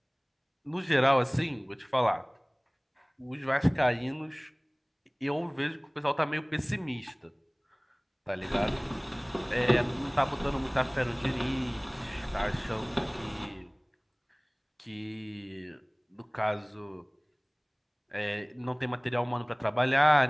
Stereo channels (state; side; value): identical; both; correlation 1.00